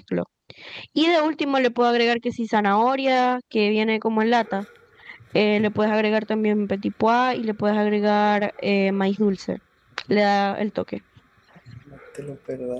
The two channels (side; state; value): both; identical; correlation 1.00